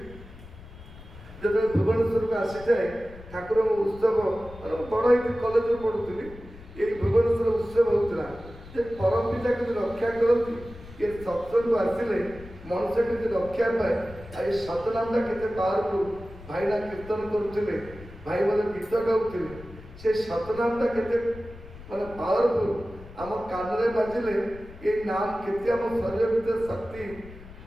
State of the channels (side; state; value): left; noise; rumble, 17 dB below the sound